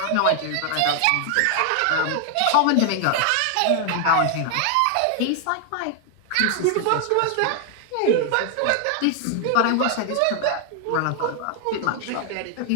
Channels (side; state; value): both; different; correlation 0.00